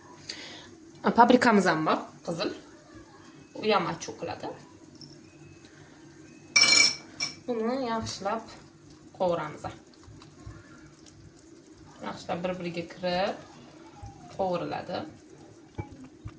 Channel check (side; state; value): both; identical; correlation 1.00